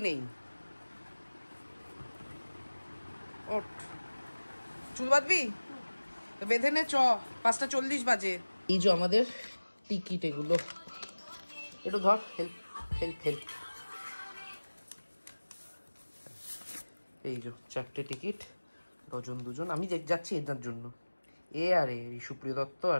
নেই। ওঠ, চুল বাঁধবি তো বেঁধে নে, চ 5:40 বাজে। এই যে আমাদের টিকিট, এগুলো একটু ধর, হেল্প হেল্প হেল্প। এই যে 4টে টিকিট, ডজন দুজন। আমি যাচ্ছি এদের জন্য, এ আর এই সুপ্রিয় দত্ত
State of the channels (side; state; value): both; inverted; correlation -1.00